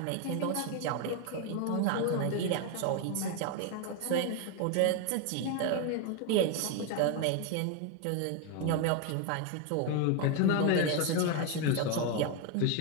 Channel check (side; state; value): both; different; correlation 0.01